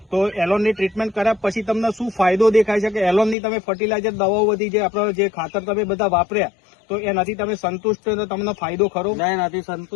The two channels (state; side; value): drops out; right; at 3.4 s